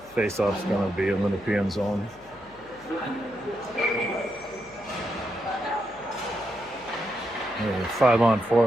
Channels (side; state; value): left; noise; hum, 25 dB below the sound